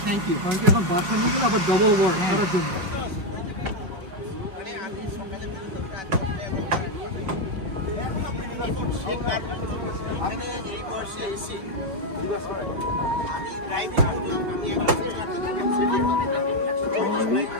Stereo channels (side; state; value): left; late; 5.7 ms